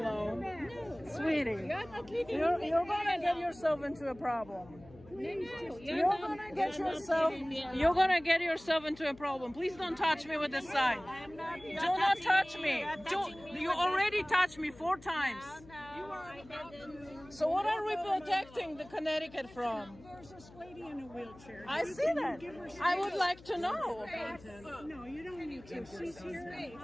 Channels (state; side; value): noise; left; hum, 21 dB below the sound